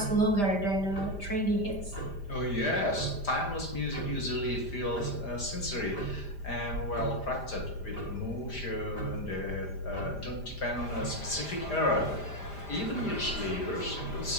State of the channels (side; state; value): right; late; 5.0 ms